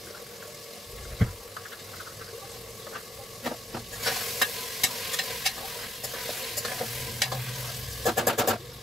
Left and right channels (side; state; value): both; normal; correlation 0.75